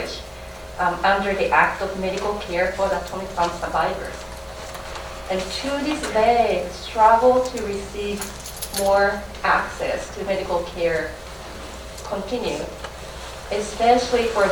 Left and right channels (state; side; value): identical; both; correlation 1.00